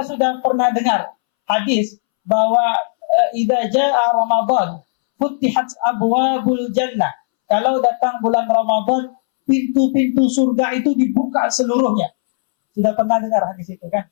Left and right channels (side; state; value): right; silent; 66 dB below the other